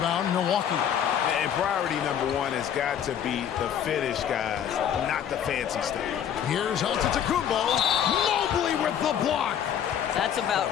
Milwaukee. And priority number 1 has got to be the finish, guys, not the fancy stuff. Here's Antetokounmpo. Mobley with the block. That's about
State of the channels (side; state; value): right; quieter; 9.2 dB